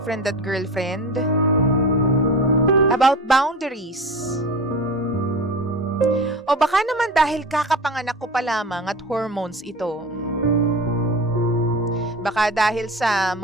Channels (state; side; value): normal; both; correlation 0.32